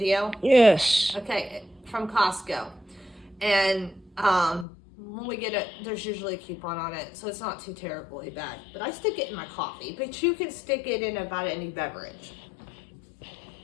Yes. Okay, from Costco. And when we get it, there's usually a coupon on it, so it's not too terribly bad. But I stick it in my coffee, but you can stick it in about any beverage.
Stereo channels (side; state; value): right; drops out; at 4.7 s